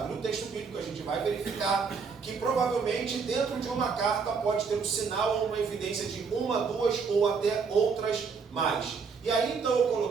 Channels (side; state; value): left; quieter; 5.4 dB